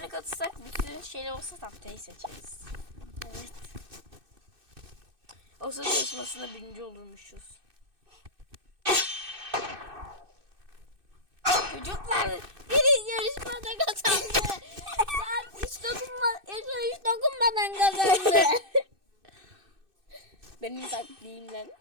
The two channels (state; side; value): late; left; 2.6 ms